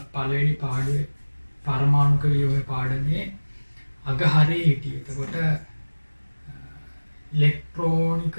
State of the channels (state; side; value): inverted; both; correlation -1.00